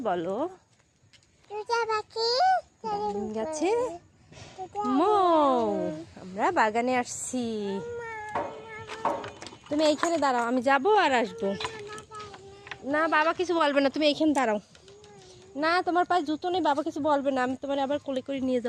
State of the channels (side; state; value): both; identical; correlation 1.00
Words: বলো, গাছে মৌ। আমরা বাগানে আসছি। তুমি এইখানে দাঁড়াও, আমি যাবো আর আসবো। না, বাবা কিছু বলবে না, তুমি এইখানে দাঁড়াও। না, তোমার পায়ে জুতো নেই, বাবা কিছু বলবে না, আমি তোমার আবার কোলে করে নিয়ে